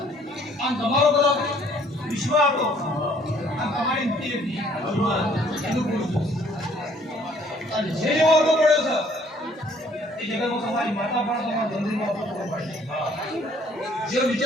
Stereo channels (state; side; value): normal; both; correlation 0.61